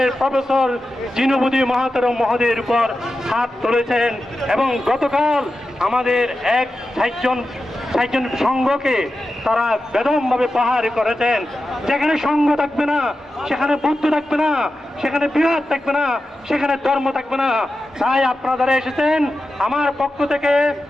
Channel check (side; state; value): both; normal; correlation 0.92